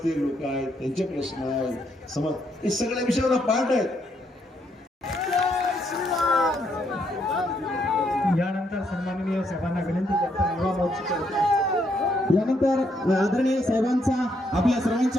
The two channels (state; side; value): normal; both; correlation 0.74